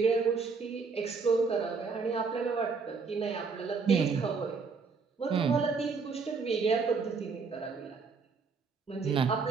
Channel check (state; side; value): quieter; left; 4.9 dB